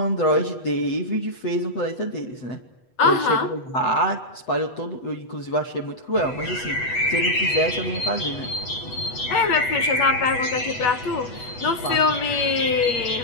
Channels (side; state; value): right; late; 8.1 ms